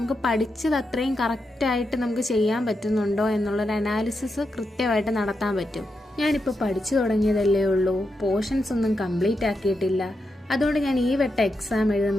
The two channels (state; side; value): normal; both; correlation 0.86